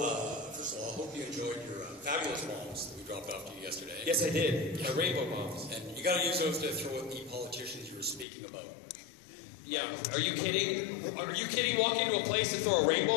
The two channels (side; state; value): right; drops out; at 8.2 s